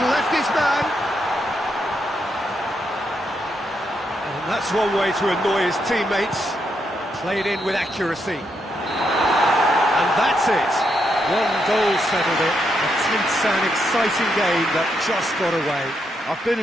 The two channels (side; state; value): both; normal; correlation 0.80